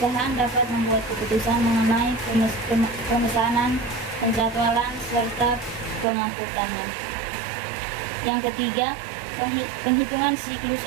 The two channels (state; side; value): drops out; left; at 6.1 s